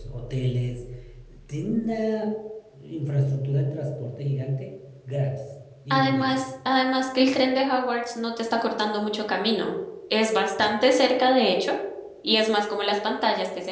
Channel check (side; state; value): both; identical; correlation 1.00